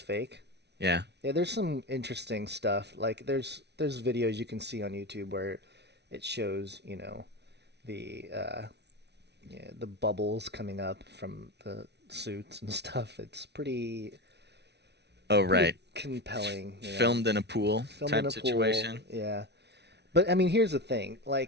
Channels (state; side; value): late; left; 0.50 ms